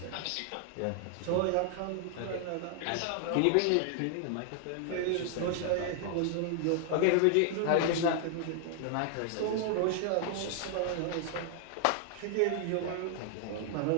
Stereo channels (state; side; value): different; both; correlation 0.00